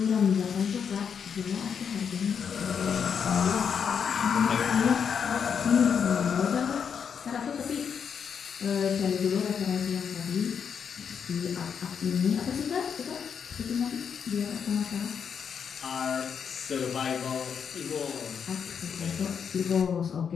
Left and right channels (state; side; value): quieter; right; 7.1 dB